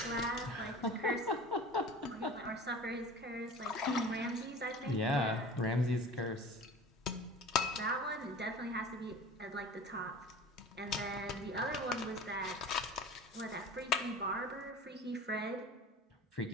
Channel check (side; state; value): both; normal; correlation 0.39